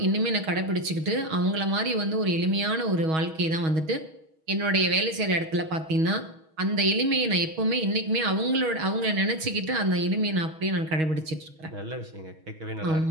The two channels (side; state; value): left; late; 6.3 ms